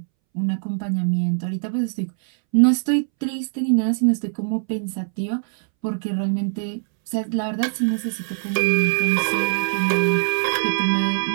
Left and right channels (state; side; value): silent; left; 64 dB below the other